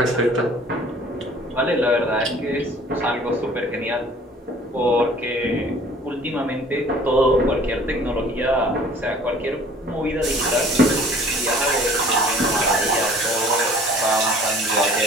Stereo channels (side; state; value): both; normal; correlation 0.51